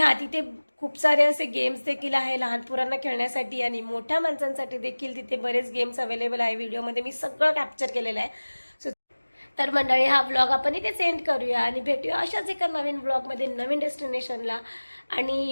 तिथे खूप सारे असे गेम्स देखील आहे लहान पोरांना खेळण्यासाठी आणि मोठ्या माणसांसाठी देखील तिथे बरेच गेम्स अवेलेबल आहे. व्हिडिओमध्ये मी सगळं कॅप्चर केलेलं आहे. सो तर मंडळी हा व्लॉग आपण इथे सेंड करूया आणि भेटूया अशाच एका नवीन व्लॉगमध्ये नवीन डेस्टिनेशनला.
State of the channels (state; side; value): inverted; both; correlation -1.00